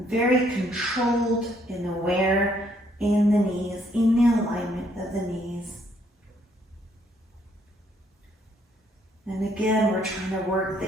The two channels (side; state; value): both; normal; correlation 0.69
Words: very controlled and aware in the knees, in the alignment of the knees. And again, we're trying to work